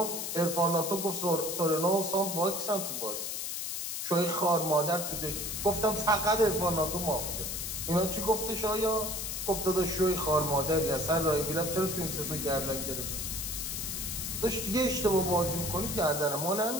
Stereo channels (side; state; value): left; noise; hiss, 3 dB below the sound